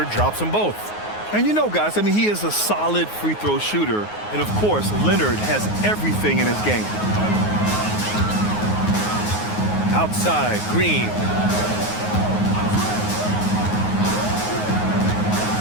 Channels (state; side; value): late; right; 9.5 ms